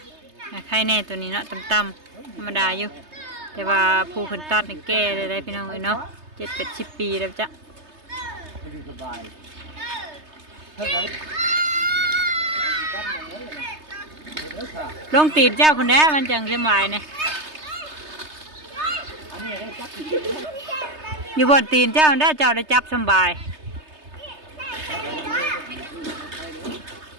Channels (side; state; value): left; late; 3.3 ms